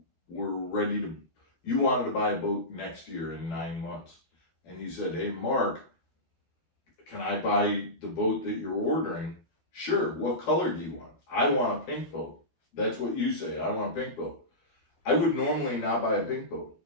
wanted to buy a boat next year in 9 months, and you said, hey Mark, can I buy the boat that you're ordering? Sure, what color do you want? I want a pink boat. That's what you say, I want a pink boat. I would normally not buy a pink boat,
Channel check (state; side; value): late; right; 12 ms